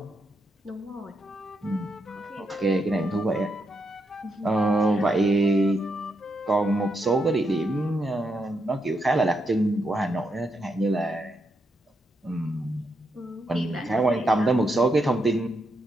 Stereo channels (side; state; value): both; normal; correlation 0.81